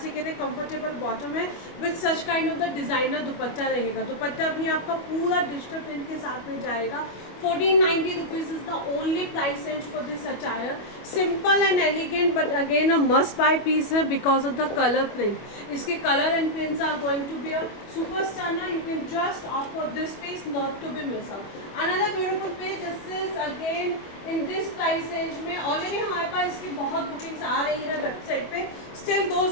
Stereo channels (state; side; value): late; right; 25 ms